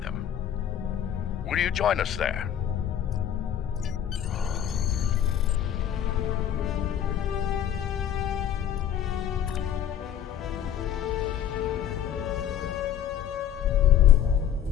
them. Will you join us there?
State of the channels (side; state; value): right; quieter; 9.9 dB